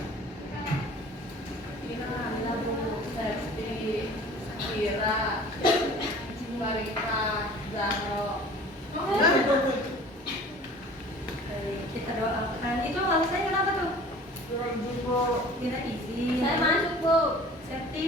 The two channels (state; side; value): normal; both; correlation 0.46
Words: Ina, Bu, Septi, Kira, Marita, Zahro. Baik, kita doakan. Itu alasannya kenapa tuh? Kira izin. Saya masuk Bu.